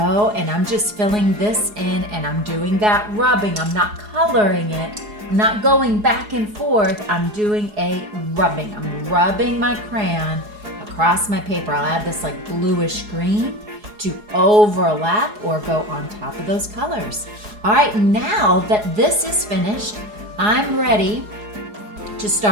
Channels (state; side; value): late; left; 4.8 ms